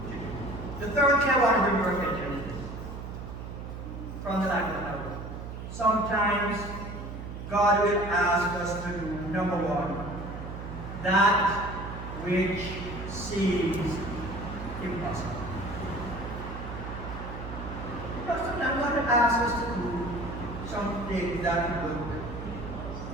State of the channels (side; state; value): right; noise; hum, 9 dB below the sound